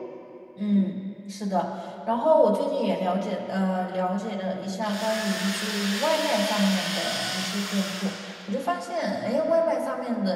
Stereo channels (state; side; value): identical; both; correlation 1.00